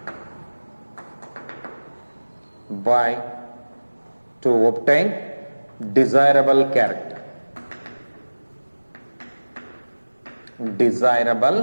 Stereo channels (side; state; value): both; inverted; correlation -1.00